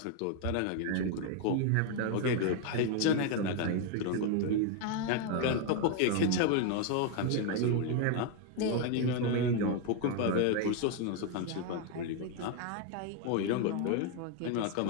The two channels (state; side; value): different; both; correlation 0.01